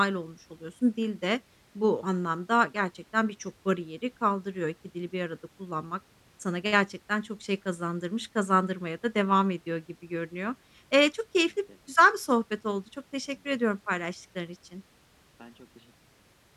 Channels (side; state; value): both; identical; correlation 1.00